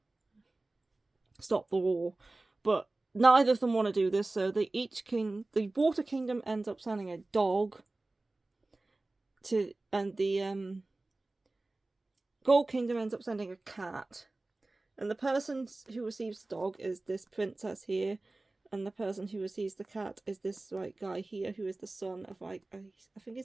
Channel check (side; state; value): left; quieter; 3.0 dB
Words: stop the war. But neither of them want to do this, so the Water Kingdom ends up sending a dog and the Gold Kingdom ends up sending a cat. And the person who receives the dog is this princess here, and the person who receives the cat is this like guy here who is the son of like I think